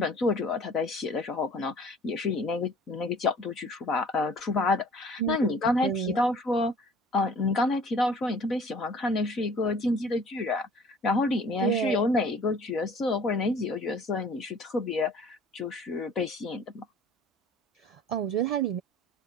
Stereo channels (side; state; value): both; normal; correlation 0.50